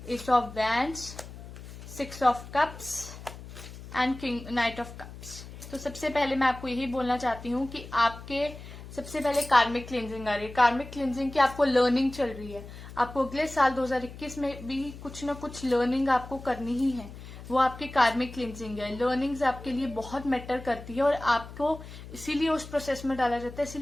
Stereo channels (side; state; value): left; noise; hum, 14 dB below the sound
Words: S of wands, 6 of cups and king night of cups. तो सबसे पहले मैं आपको यही बोलना चाहती हूँ कि आपके सबसे पहले कार्मिक क्लींजिंग आ रही है। कार्मिक क्लींजिंग की आपको लर्निंग चल रही है, आपको अगले साल 2021 में भी कुछ ना कुछ लर्निंग आपको करनी ही है, वो आपकी कार्मिक क्लींजिंग है। लर्निंग्स आपके लिए बहुत मैटर करती है और आपको इसीलिए उस प्रोसेस में डाला जाता है।